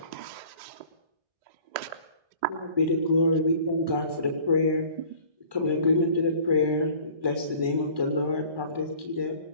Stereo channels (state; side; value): late; left; 1.1 ms